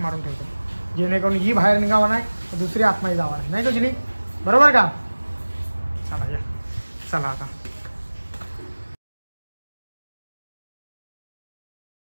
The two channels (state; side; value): inverted; both; correlation -1.00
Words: मारून ठेवतो जेणेकरून ही बाहेर निघावा नाही दुसरी आतमध्ये जावा नाही का जुली? बरोबर का? चला या चला आता.